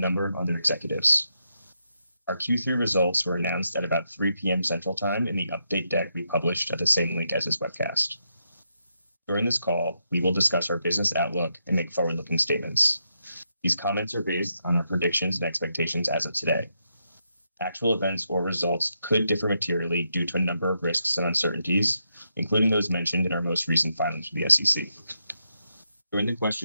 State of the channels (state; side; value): inverted; both; correlation -0.83